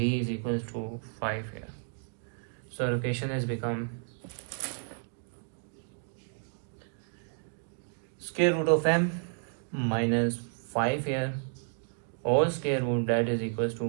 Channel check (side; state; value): left; silent; 57 dB below the other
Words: is equals to 5 here. So equation has become square root of m minus 5 here whole square root, that is equals